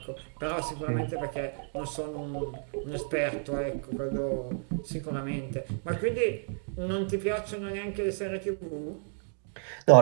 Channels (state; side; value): silent; left; 56 dB below the other